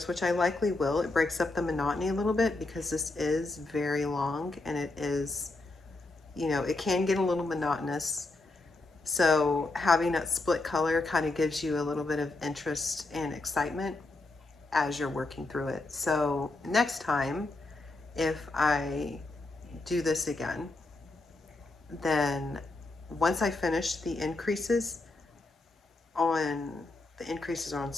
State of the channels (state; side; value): quieter; right; 3.1 dB